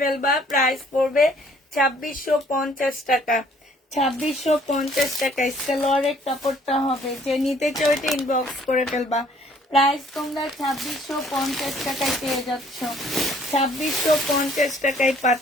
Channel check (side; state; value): both; normal; correlation 0.59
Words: প্রাইস পড়বে 2650 টাকা। 2650 টাকায় সালোয়ারের কাপড়টা হবে। যে নিতে চাও এটা ইনবক্স করে ফেলবা। প্রাইস তোমরা 2650 টাকায় পেয়ে যাচ্ছ। 2650 টাকায়